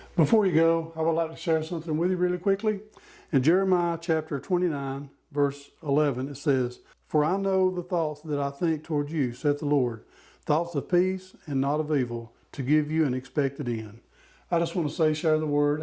Before you go, I would like to share something with you really quickly. In Jeremiah chapter 29, verse 11, it says, "For I know the thoughts that I think toward you, saith the Lord, thoughts of peace and not of evil, to give you an expected end. I just want to say, share the word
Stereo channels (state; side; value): identical; both; correlation 1.00